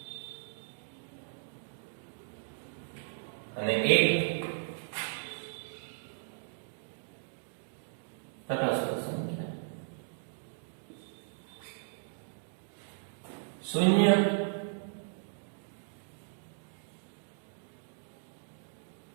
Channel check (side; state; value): left; silent; digital silence